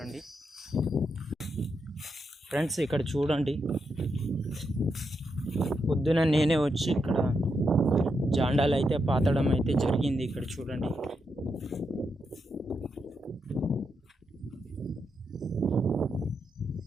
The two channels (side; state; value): both; normal; correlation 0.83